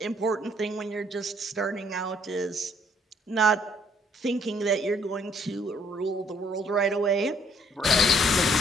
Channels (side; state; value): both; normal; correlation 0.65